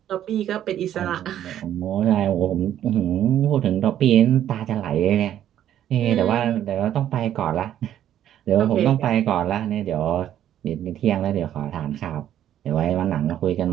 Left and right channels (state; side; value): quieter; left; 11.1 dB